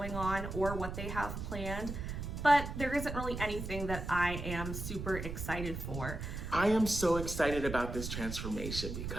on or what they have planned, but there isn't really anything that I am super excited for. I am so excited about this transformation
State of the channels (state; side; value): noise; right; rumble, 6 dB below the sound